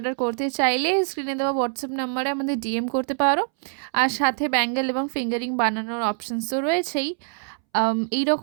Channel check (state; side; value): silent; left; 62 dB below the other